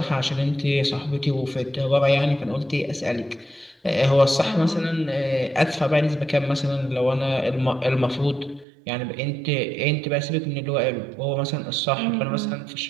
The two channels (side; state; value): left; drops out; at 8.7 s